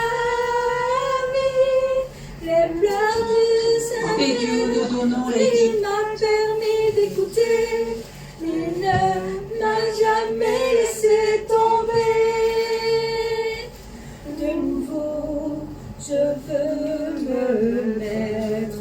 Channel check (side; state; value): both; identical; correlation 1.00